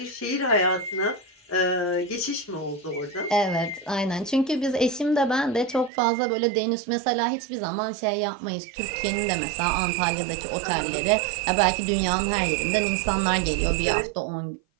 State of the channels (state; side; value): drops out; left; at 5.9 s